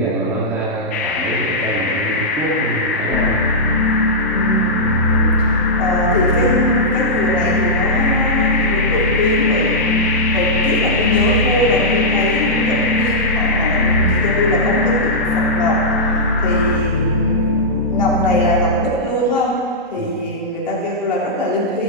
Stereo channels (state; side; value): normal; both; correlation -0.11